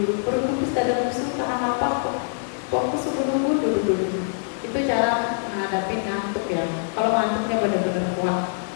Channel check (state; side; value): silent; right; digital silence